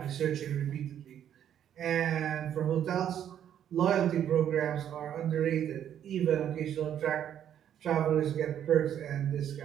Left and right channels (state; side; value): quieter; left; 9.9 dB